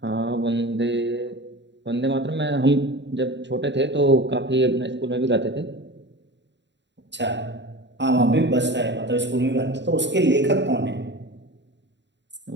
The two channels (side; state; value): left; late; 0.52 ms